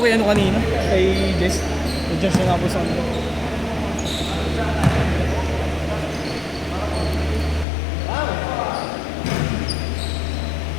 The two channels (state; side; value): drops out; right; at 7.7 s